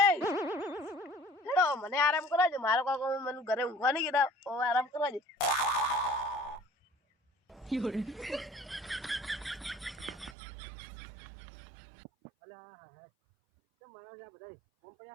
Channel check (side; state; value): left; drops out; at 10.4 s